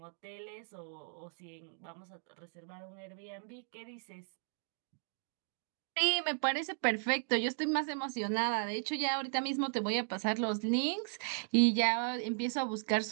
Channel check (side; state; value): left; silent; digital silence